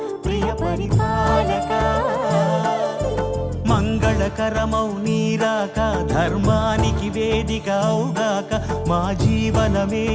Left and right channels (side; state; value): both; identical; correlation 1.00